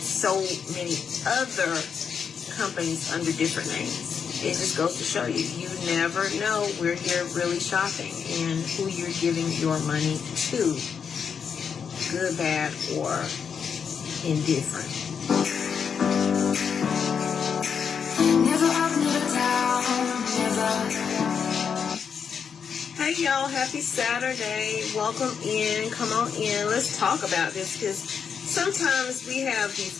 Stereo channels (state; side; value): quieter; right; 6.8 dB